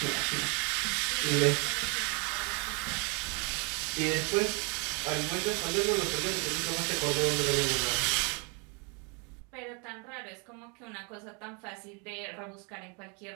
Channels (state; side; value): quieter; left; 34.2 dB